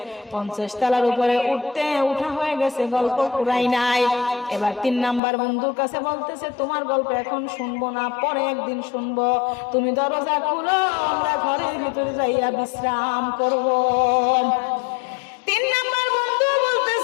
50 তলার উপরে উঠা হয়ে গেছে, গল্প পুরাই নাই। এবার 3 নাম্বার বন্ধুর কাছে বলতেছে, তোমার গল্প এখন শুনবো না, পরে একদিন শুনবো, তুমি দরজা খুলো, আমরা ঘরের ভিতরে যাইয়া বিশ্রাম করব। 3 নাম্বার বন্ধু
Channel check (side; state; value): right; drops out; at 5.2 s